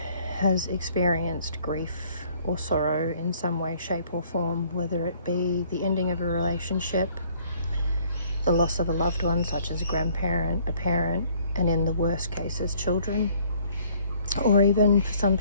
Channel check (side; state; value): both; inverted; correlation -0.60